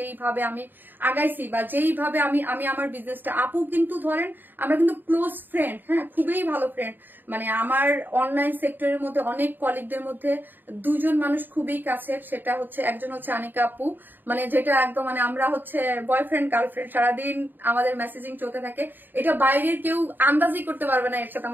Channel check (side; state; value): left; late; 0.092 ms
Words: আমি আগাইছি বা যেইভাবে আমি আমার বিজনেসটা, আপু কিন্তু ধরেন আমরা কিন্তু ক্লোজ ফ্রেন্ড। হ্যাঁ, খুবই ভালো ফ্রেন্ড। মানে আমার অনলাইন সেক্টরের মধ্যে অনেক কলিগদের মধ্যে দুজন মানুষ খুবই কাছের, সেটা হচ্ছে একজন হচ্ছে আনিকা আপু, মানে যেটা একদম মানে আমরা হচ্ছে বয়ফ্রেন্ড গার্লফ্রেন্ড, সারাদিন আমাদের মেসেজিং চলতে থাকে, এটা বাইরের কেউ আন্দাজই করতে পারবে না এর সাথে